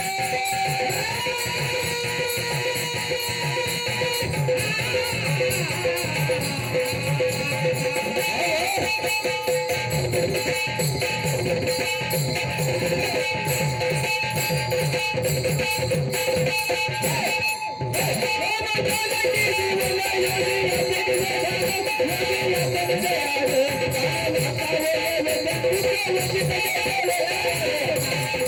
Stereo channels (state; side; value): identical; both; correlation 1.00